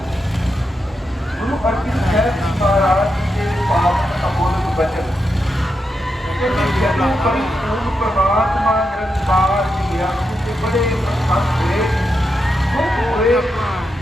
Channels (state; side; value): normal; both; correlation 0.85